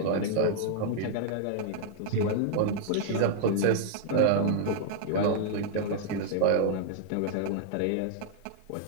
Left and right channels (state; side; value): different; both; correlation -0.01